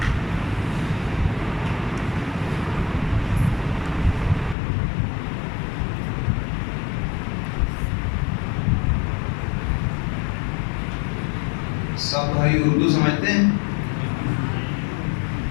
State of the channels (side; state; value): right; drops out; at 4.5 s